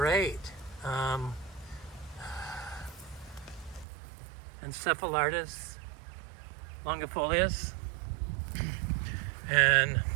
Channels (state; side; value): drops out; left; at 3.9 s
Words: Encephalitis longifolius and